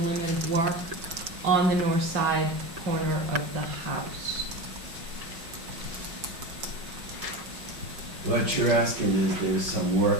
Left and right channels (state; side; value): late; left; 6.1 ms